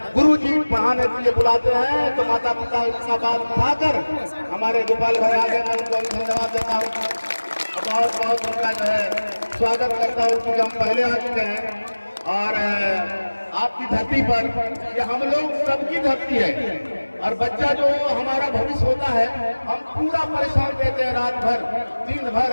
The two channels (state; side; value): inverted; both; correlation -1.00